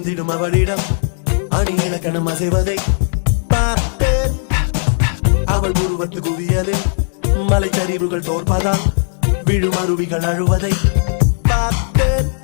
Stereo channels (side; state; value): right; silent; digital silence